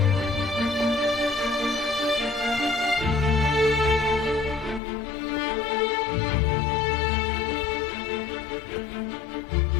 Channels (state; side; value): drops out; right; at 4.8 s